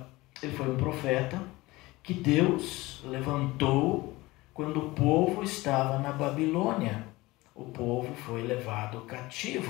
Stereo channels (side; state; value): right; quieter; 20.5 dB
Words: Ele foi um profeta que Deus levantou quando o povo estava na Babilônia. O povo foi levado